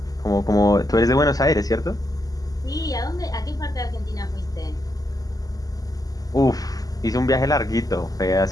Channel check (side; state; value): right; late; 0.17 ms